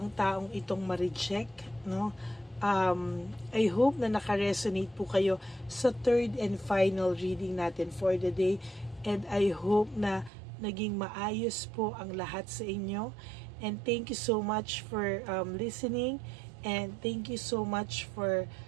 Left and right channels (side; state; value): left; drops out; at 10.3 s